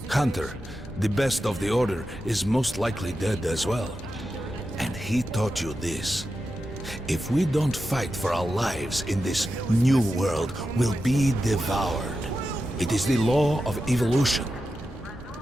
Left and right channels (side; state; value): both; normal; correlation 0.90